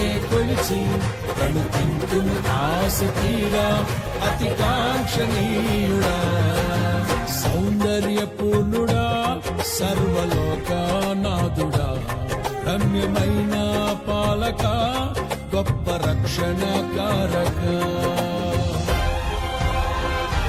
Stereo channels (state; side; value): identical; both; correlation 1.00